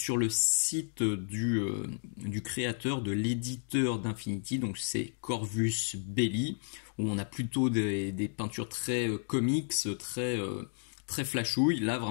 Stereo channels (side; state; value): right; silent; digital silence